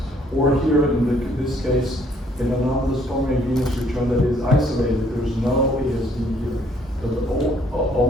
Or here in this case, an anomalous pulmonary venous return that is isolated. There's no ASD here. But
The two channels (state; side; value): normal; both; correlation 0.64